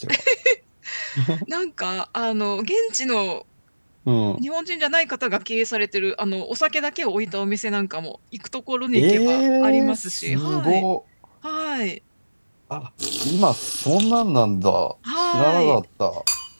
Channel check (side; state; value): both; inverted; correlation -1.00